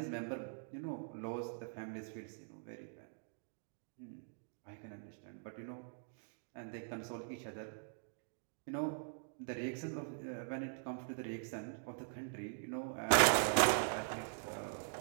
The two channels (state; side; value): silent; left; digital silence